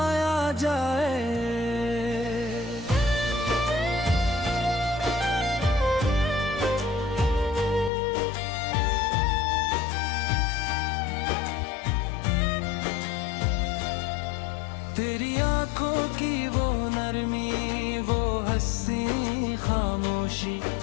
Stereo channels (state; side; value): drops out; right; at 7.9 s